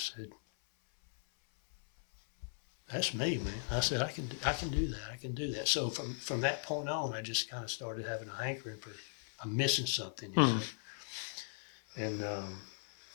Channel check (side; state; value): right; silent; 52 dB below the other